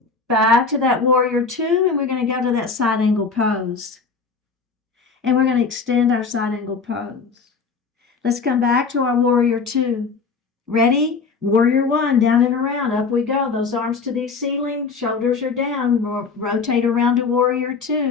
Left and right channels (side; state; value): right; quieter; 4.8 dB